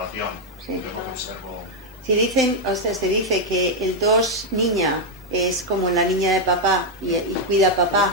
Sí. Yo lo que observo. Si dicen, o sea, se dice que el 2 niña es como la niña de papá y cuida a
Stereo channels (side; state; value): both; normal; correlation 0.00